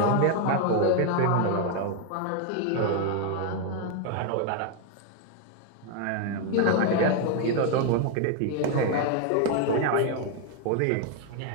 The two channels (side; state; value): both; different; correlation 0.01